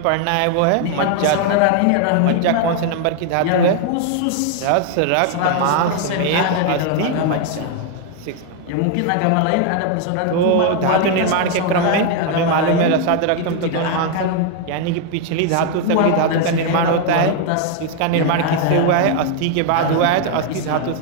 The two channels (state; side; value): different; both; correlation 0.01